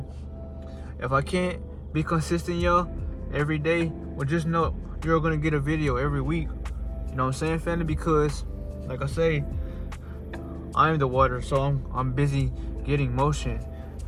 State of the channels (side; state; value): both; identical; correlation 1.00